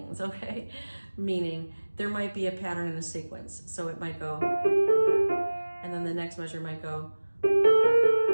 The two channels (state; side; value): inverted; both; correlation -1.00